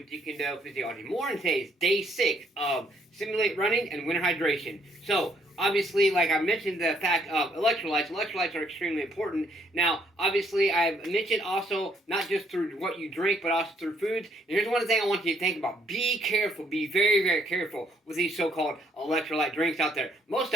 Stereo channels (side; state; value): both; normal; correlation 0.67